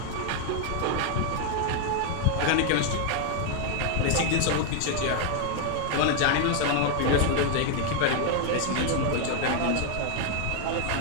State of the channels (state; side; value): different; both; correlation 0.00